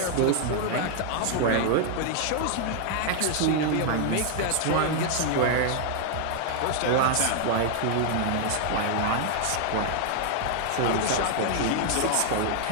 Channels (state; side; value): different; both; correlation 0.00